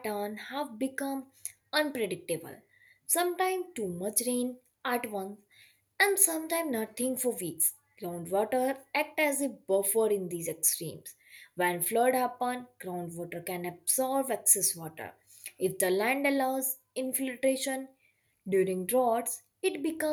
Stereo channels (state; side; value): identical; both; correlation 1.00